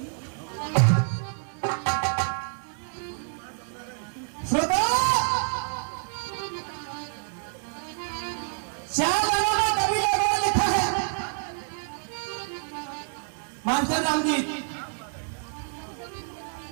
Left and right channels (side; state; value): left; silent; 60 dB below the other